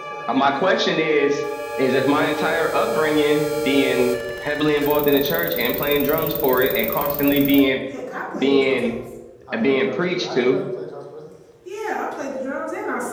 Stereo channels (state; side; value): identical; both; correlation 1.00